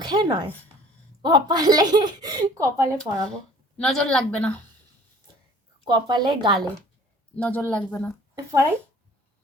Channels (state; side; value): normal; both; correlation 0.51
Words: নয়, কপালে, কপালে পরাবো। নজর লাগবে না, কপালে, গালে নজর লাগবে না। পরাই।